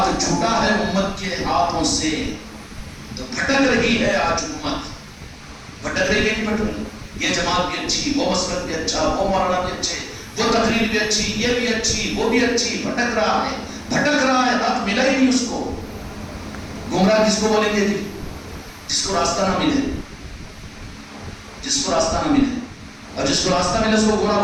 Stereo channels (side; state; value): both; identical; correlation 1.00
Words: چھوٹا ہے امت کے ہاتھوں سے تو بھٹک رہی ہے آج امت. بھٹک رہی ہے، نہیں بھٹک رہی. یہ جماعت بھی اچھی، وہ مسلک بھی اچھا، وہ مولانا بھی اچھے، وہ تقریر بھی اچھی، یہ بھی اچھی، وہ بھی اچھی. بھٹک رہا ہے، حق ملا ہی نہیں اس کو. گمراہ کس کو بولیں گے؟ جس کو راستہ نہ ملے، جس کو راستہ نہ ملے. اور جس کو راستہ ملے اس کو گمراہ